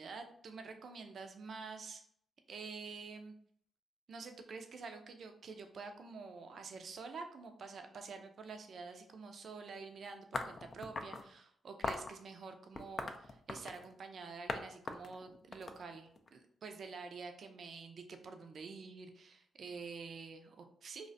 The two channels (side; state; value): both; normal; correlation 0.80